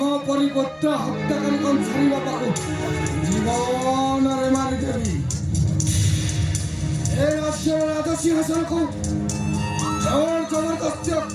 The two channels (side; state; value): both; identical; correlation 1.00